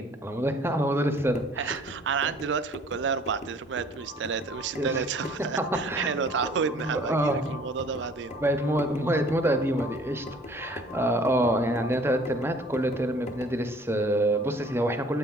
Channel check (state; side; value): normal; both; correlation 0.53